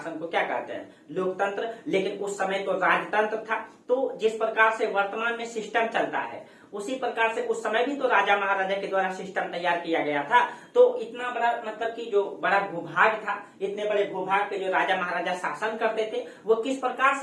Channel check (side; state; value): both; identical; correlation 1.00